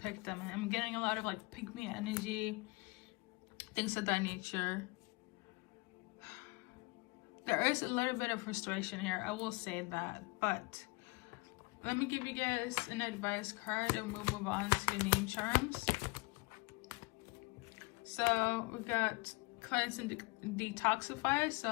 them. And I'm getting a lot of like pick me energy, things of that nature. There is a little bit of frustration here, I will say that, but let me give you guys an advice card and we'll move on to your name charms. So we got cleanse and detoxify.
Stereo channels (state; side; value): quieter; right; 26.6 dB